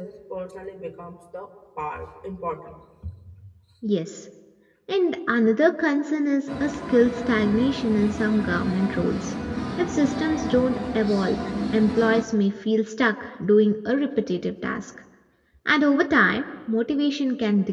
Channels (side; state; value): both; identical; correlation 1.00